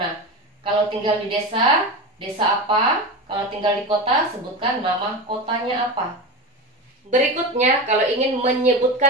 Kalau tinggal di desa, desa apa? Kalau tinggal di kota, sebutkan nama kotanya apa. Berikutnya, kalau ingin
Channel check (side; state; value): both; normal; correlation 0.23